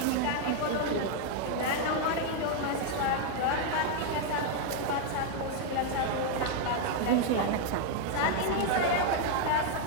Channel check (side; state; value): both; different; correlation 0.00